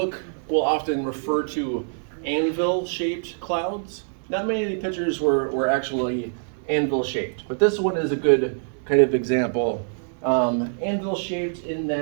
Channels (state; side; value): silent; left; 62 dB below the other